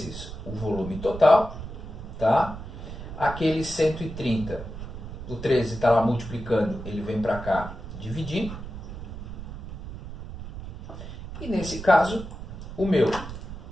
o volume total. Tá? Aquele 130, o 13 está lá multiplicando, ele vem para cá dividindo. E nesse caso, o meu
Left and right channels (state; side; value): noise; right; rumble, 10 dB below the sound